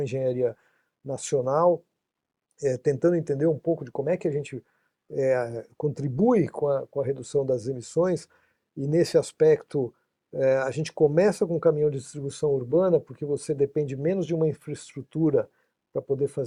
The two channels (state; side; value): identical; both; correlation 1.00